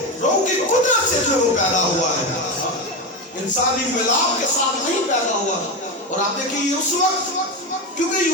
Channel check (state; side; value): normal; both; correlation 0.16